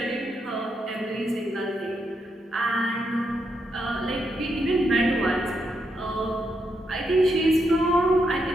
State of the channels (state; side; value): normal; both; correlation 0.81